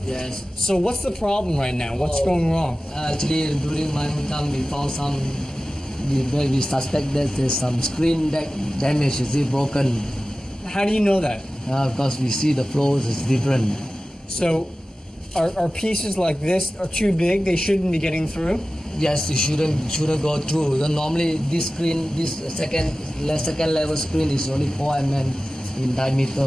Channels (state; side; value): normal; both; correlation 0.96